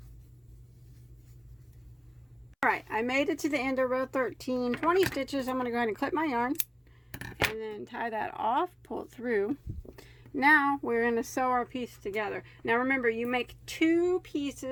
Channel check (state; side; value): identical; both; correlation 1.00